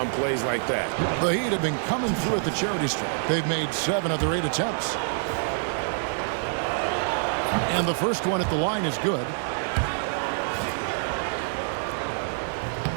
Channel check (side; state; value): left; silent; digital silence